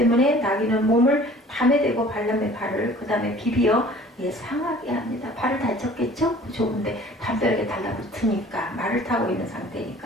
나귀는 몸을 담에 대고 발람의 발을 그 다음에 비비어 상하게 합니다. 발을 다쳤겠죠? 좁은데 담벼락에 달라붙으니까 말을 타고 있는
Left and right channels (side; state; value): both; normal; correlation 0.49